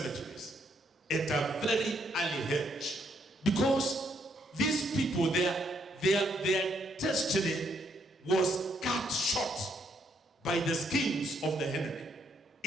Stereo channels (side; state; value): both; normal; correlation 0.73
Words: at a very early age. Because these people, their destiny was cut short by the schemes of the enemy.